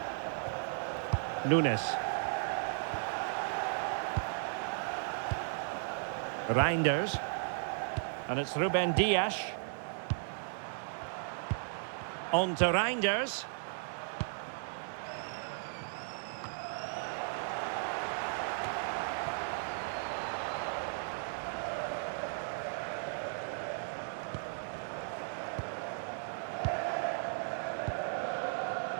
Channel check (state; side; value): silent; left; 54 dB below the other